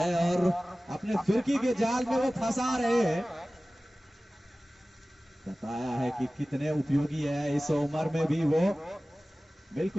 और अपने फिरकी के जाल में वो फंसा रहे हैं। बताया है कि कितने उपयोगी है इस उम्र में भी वो।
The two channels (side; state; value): both; normal; correlation 0.97